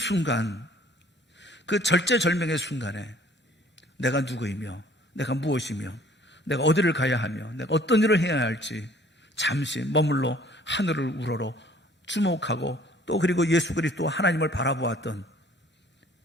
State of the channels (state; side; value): normal; both; correlation 0.55